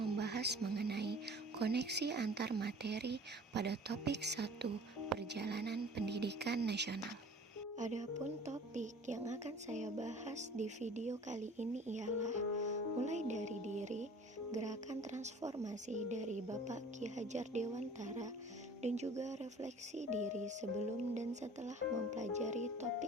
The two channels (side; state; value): both; normal; correlation 0.47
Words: mengenai koneksi antar materi pada topik 1 Perjalanan Pendidikan Nasional. Adapun topik yang akan saya bahas di video kali ini ialah mulai dari diri, gerakan transformasi dari Bapak Ki Hajar Dewantara, dan juga refleksi diri sebelum dan setelah mempelajari